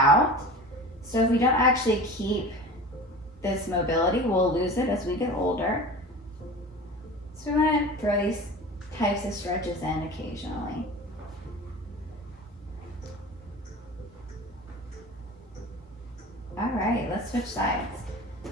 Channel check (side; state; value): both; normal; correlation 0.35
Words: So if we don't actually keep this mobility, we'll lose it as we get older. So we're going to throw these types of stretches in occasionally. All right, let's switch sides.